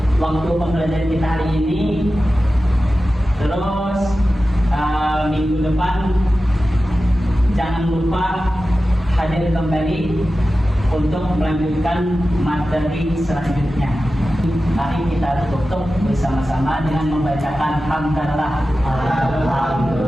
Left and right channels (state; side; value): normal; both; correlation 0.94